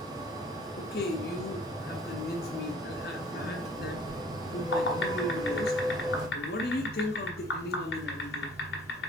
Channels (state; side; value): normal; both; correlation 0.53